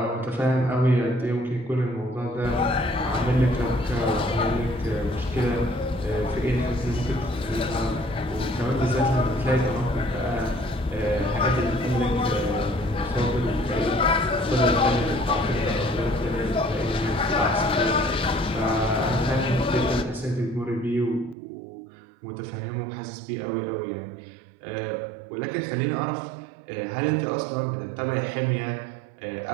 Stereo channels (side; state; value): left; drops out; at 21.4 s